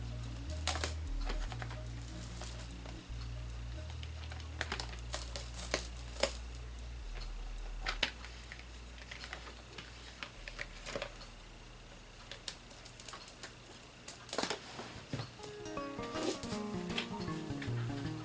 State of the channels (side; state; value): both; identical; correlation 1.00